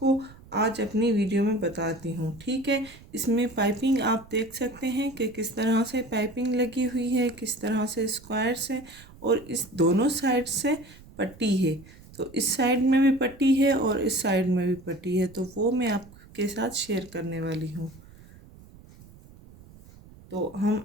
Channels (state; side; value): noise; right; rumble, 22 dB below the sound